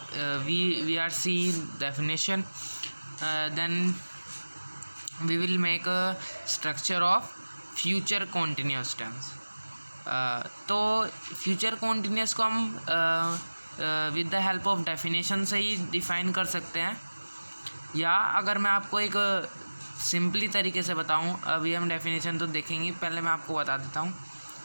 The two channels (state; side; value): inverted; both; correlation -1.00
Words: we are seeing definition, then we will make a structure of future continuous tense. तो future continuous को हम with the help of definition से ही डिफ़ाइन कर सकते हैं, या अगर मैं आपको एक सिंपली तरीके से बताऊं, अभी हम डेफिनेशन तो देखेंगे, पहले मैं आपको बता देता हूं।